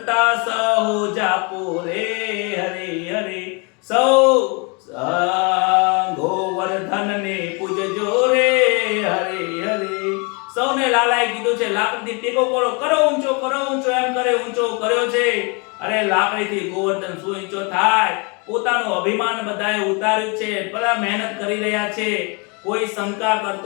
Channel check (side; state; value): right; quieter; 32.1 dB